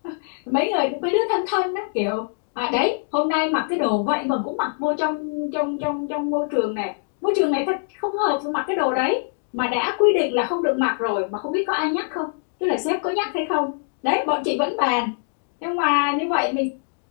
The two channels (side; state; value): right; silent; digital silence